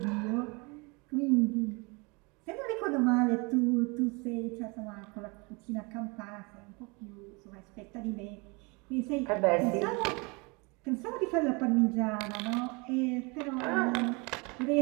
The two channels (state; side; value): quieter; left; 28.8 dB